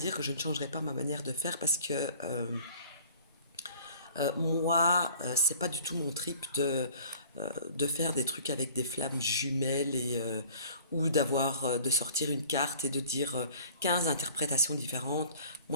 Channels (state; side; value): inverted; both; correlation -0.50